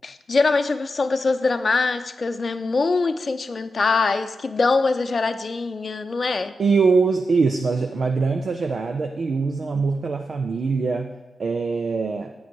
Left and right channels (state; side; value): normal; both; correlation 0.87